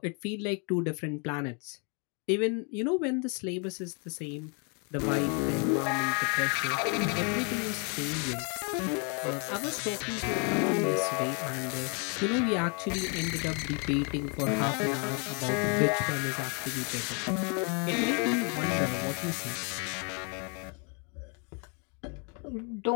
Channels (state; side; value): quieter; right; 36.1 dB